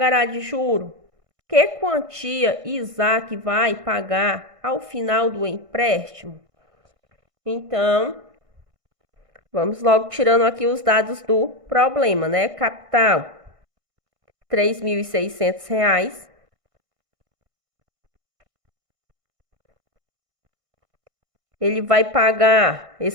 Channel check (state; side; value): late; left; 1.5 ms